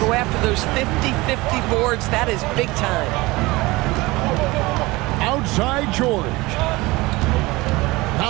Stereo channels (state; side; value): quieter; left; 21.7 dB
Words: go after those 50-50 boards, that is big time. Outside George.